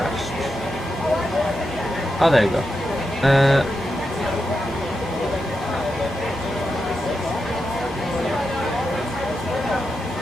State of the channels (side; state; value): both; normal; correlation 0.87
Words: Oh, there you go.